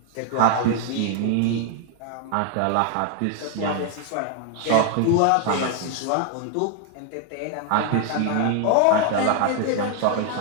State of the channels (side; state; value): both; different; correlation 0.00